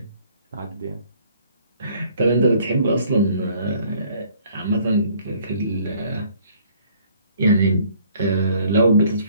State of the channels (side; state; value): both; inverted; correlation -0.59